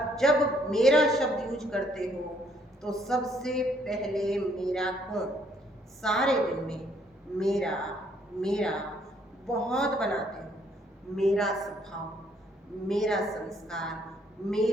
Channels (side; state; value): both; normal; correlation 0.67